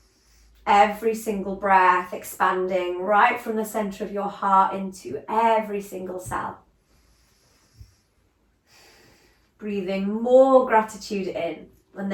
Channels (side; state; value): both; identical; correlation 1.00